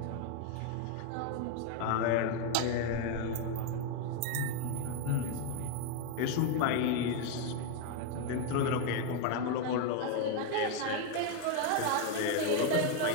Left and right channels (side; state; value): both; different; correlation 0.01